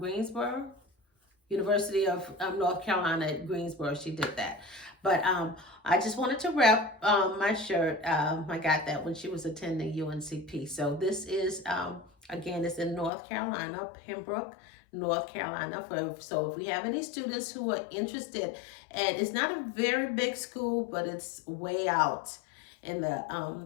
University of North Carolina at Greensboro. She did that. But I just wanted to rep my shirt. I got that when she was attending UNCP. So this is, again, it's in North Carolina, Pembroke, North Carolina. So if we have any students who are interested, and it's not a very big school, but it's way out in the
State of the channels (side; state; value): right; drops out; at 13.1 s